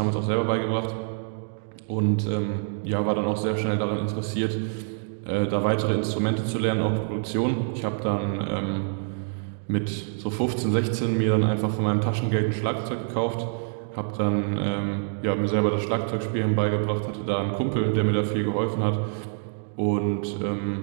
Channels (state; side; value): silent; left; digital silence